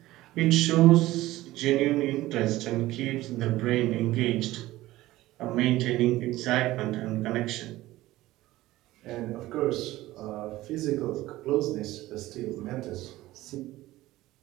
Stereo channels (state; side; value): quieter; left; 16.9 dB